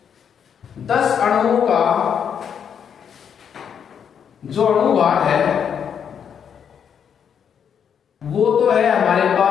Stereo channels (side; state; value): right; quieter; 7.8 dB